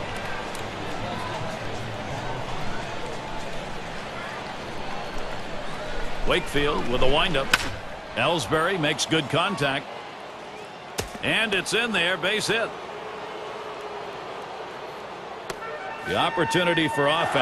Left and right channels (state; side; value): identical; both; correlation 1.00